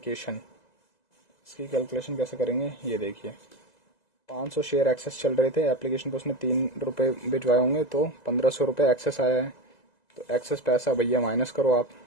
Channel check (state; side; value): late; right; 2.0 ms